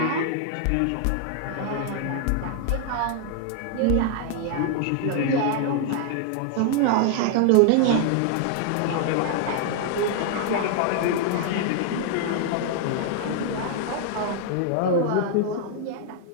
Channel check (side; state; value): both; different; correlation 0.00